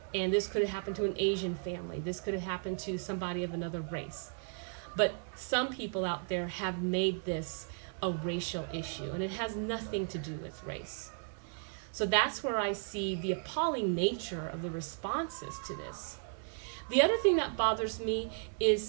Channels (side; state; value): left; silent; 54 dB below the other